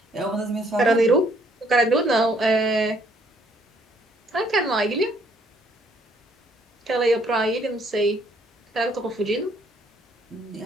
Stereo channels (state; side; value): normal; both; correlation 0.65